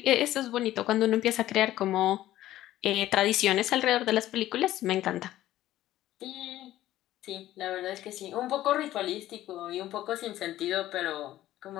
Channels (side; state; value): right; quieter; 14.2 dB